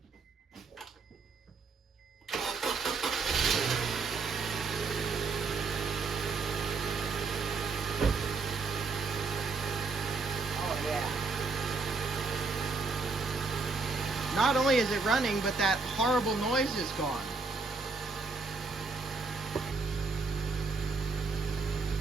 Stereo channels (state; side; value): quieter; left; 4.2 dB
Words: Oh yeah. Not only is it running, but that horrible noise is gone.